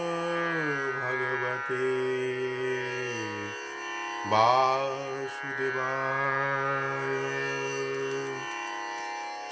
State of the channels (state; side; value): identical; both; correlation 1.00